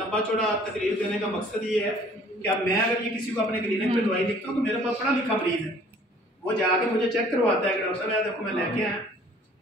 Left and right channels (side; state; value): both; normal; correlation 0.54